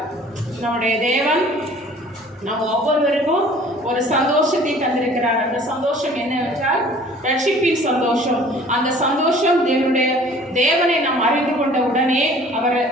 நம்முடைய தேவன் நம்ம ஒவ்வொருவருக்கும் ஒரு சந்தோஷத்தை தந்திருக்கிறார். அந்த சந்தோஷம் என்னவென்றால் ரட்சிப்பின் சந்தோஷம். அந்த சந்தோஷம் தேவனை நாம் அறிந்து கொண்ட உடனே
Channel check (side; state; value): both; normal; correlation 0.50